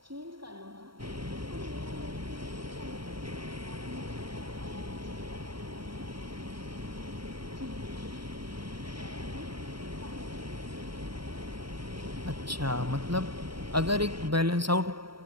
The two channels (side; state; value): left; late; 0.74 ms